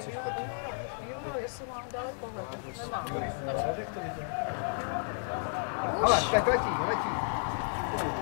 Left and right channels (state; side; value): silent; right; 56 dB below the other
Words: chodit. Jo, jestli mám daleko, nemám. Ale, tak letí.